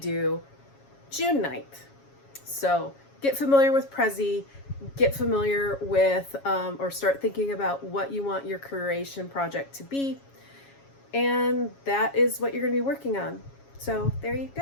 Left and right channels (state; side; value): late; right; 7.3 ms